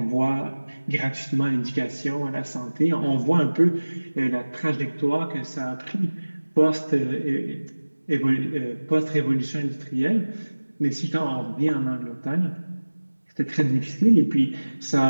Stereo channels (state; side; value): inverted; both; correlation -1.00